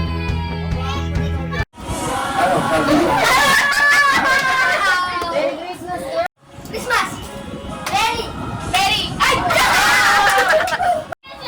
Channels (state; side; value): identical; both; correlation 1.00